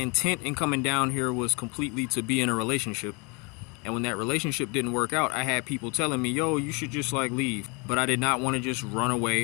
in coming down here was completely to be in a relationship. And when that relationship didn't work out, I had people telling me, yo, you should just like leave. But I did not want to just run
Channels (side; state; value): right; quieter; 30.5 dB